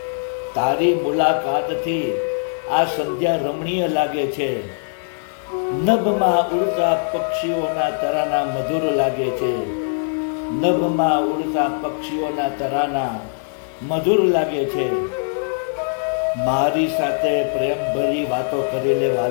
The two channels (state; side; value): silent; right; 65 dB below the other